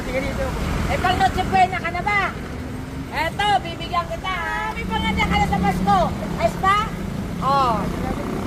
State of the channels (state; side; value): identical; both; correlation 1.00